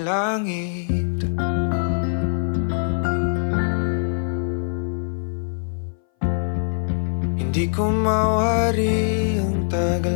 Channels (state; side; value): silent; right; 59 dB below the other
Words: langit. Hindi ko mawari ang